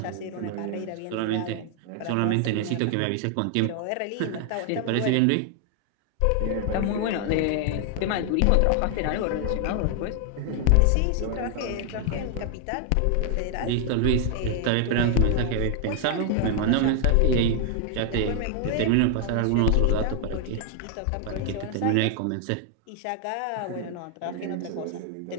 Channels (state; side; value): different; both; correlation 0.00